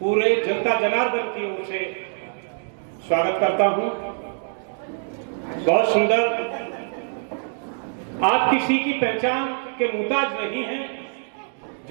जनता जनार्दन की ओर से स्वागत करता हूं। बहुत सुंदर, आप किसी की पहचान के मुहताज नहीं हैं।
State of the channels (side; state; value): left; silent; 63 dB below the other